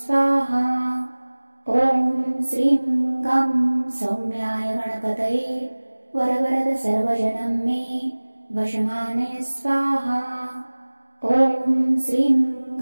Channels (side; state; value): both; inverted; correlation -1.00